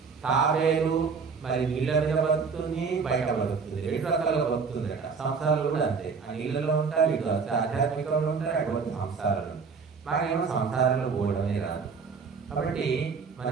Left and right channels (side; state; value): left; quieter; 5.3 dB